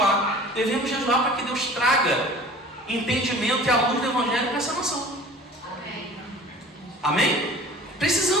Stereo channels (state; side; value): normal; both; correlation 0.44